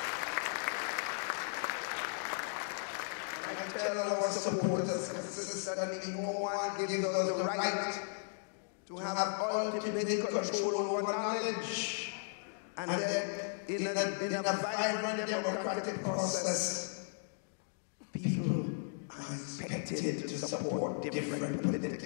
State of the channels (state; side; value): silent; right; digital silence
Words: And I tell our supporters consistently, no one gives us the right to have ultimate control over knowledge. And then in a vibrant democratic process, people are expected to support different